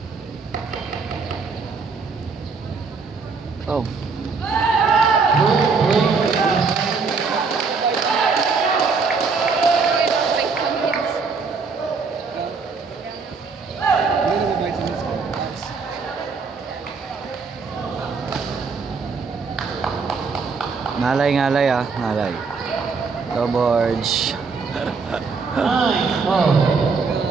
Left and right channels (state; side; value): quieter; left; 4.8 dB